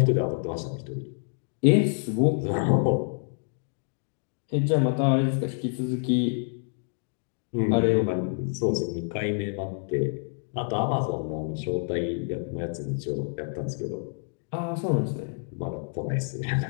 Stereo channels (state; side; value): silent; right; 60 dB below the other